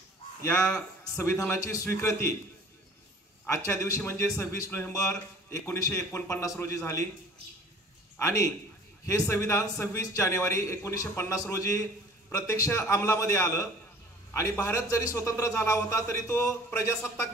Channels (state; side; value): normal; both; correlation 0.49